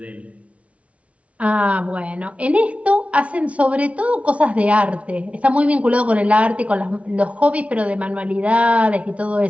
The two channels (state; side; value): late; left; 0.064 ms